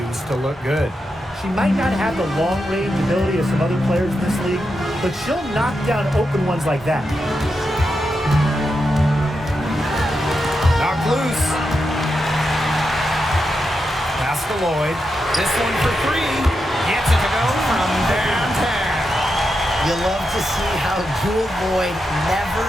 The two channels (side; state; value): both; normal; correlation 0.86